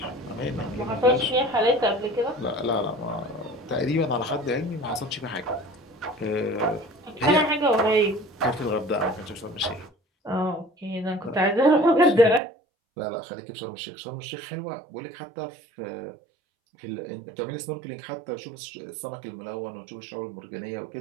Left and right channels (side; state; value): left; drops out; at 12.4 s